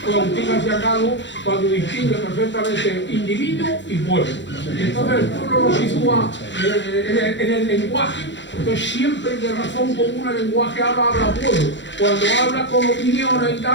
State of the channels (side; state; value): right; late; 0.53 ms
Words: Agustín García Calvo, cuando distingue perfectamente individuo y pueblo. Entonces el pueblo lo sitúa en el lenguaje, entonces siempre de razón común el lenguaje habla pueblo. Cuando habla con opiniones y